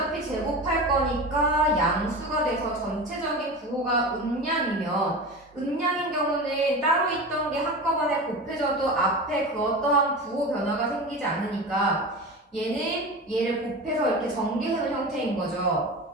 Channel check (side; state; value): both; normal; correlation 0.29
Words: 제곱할 거니까 양수가 돼서 전체적인 부호가 음량이면 음량인 경우는 따로 있던 게 한꺼번에 곱해져도 앞에 그 어떠한 부호 변화가 생기지 않으니까 얘는 얘를 곱해서 이렇게 전개하는 형태인